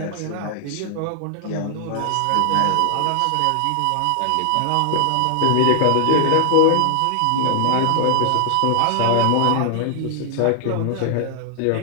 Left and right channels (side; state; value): both; different; correlation 0.00